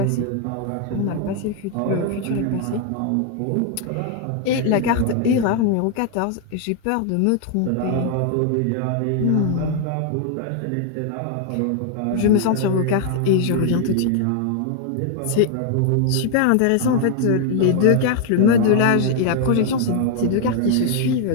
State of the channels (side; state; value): both; different; correlation 0.00